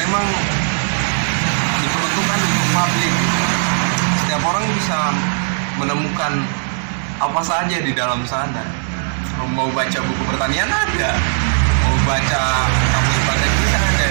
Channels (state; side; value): silent; left; 66 dB below the other